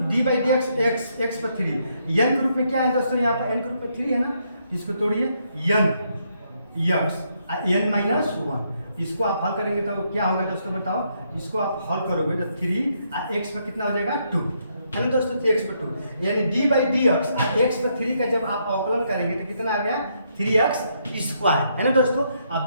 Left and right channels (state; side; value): inverted; both; correlation -0.75